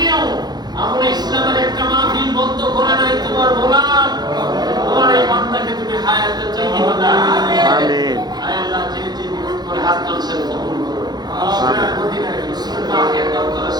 আমরা ইসলামের একটা মাহফিল বন্ধ করে নাই। তোমার গোলাম তোমার এই বান্দাকে তুমি হায়াতে তাইয়্যিবা দাও। আমিন। আল্লাহ যে নিয়ত করে হাত তুলছেন কবুল করো। আমিন। মদিনায় রাসূলুল্লাহের দরবারে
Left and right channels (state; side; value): late; left; 0.20 ms